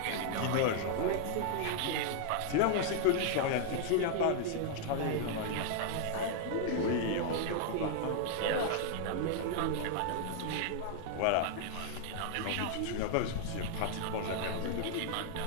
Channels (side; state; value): both; different; correlation 0.00